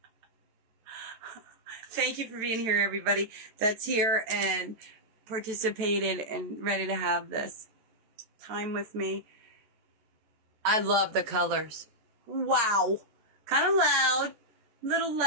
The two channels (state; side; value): late; left; 13 ms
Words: Thank you for being here, everybody that's here and participated and ready to have this time with me. I love the colors. Wow. Kind of loud. Little